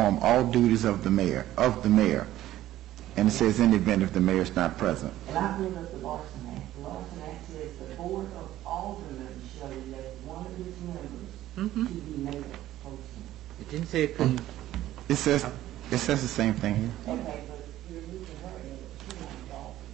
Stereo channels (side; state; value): left; quieter; 14.0 dB